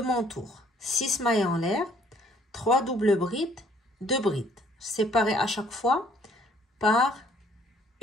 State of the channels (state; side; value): normal; both; correlation 0.61